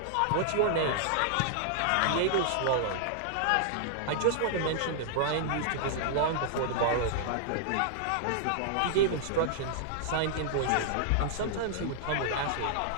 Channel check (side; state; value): both; different; correlation -0.01